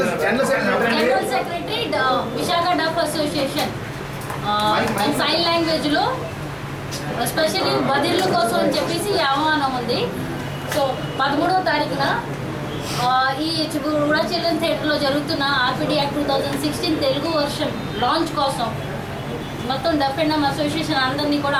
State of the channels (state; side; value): identical; both; correlation 1.00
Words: General secretary Visakha deaf association sign language లో స్పెషల్లీ బదిర్ల కోసం అని చెప్పేసి ఆహ్వానం ఉంది. సో 13వ తారీఖున ఈ కూడా చిల్డ్రన్ థియేటర్లో జరుగుతున్న RPD act 2016 Telugu version launch కోసం మొత్తం డఫ్ అండ్ డమ్ అసోసియేషన్ అందరినీ కూడా